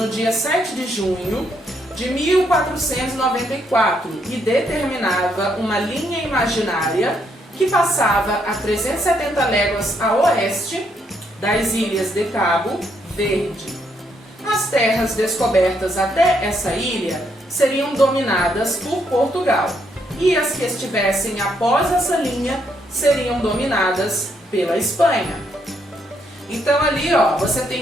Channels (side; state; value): both; normal; correlation 0.74